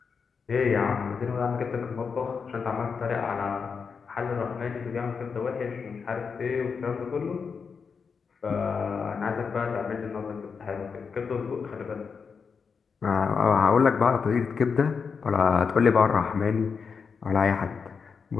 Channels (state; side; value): quieter; right; 5.7 dB